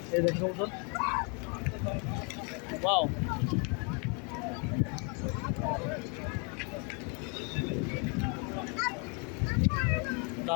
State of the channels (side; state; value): right; quieter; 35.3 dB